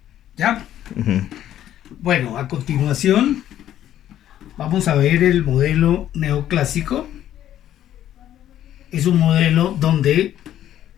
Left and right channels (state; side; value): quieter; right; 11.7 dB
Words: ¿Ya? Ujú. Bueno, a continuación vamos a ver el modelo neoclásico. Es un modelo donde